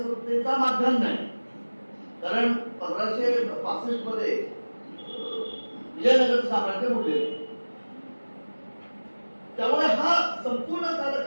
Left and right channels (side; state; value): both; inverted; correlation -1.00